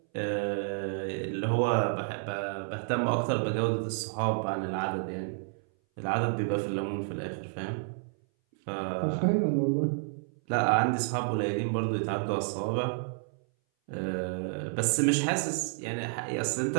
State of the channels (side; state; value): left; silent; 58 dB below the other